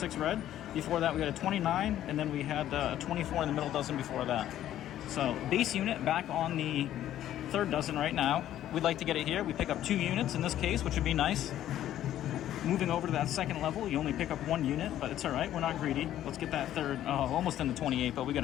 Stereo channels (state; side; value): quieter; right; 12.2 dB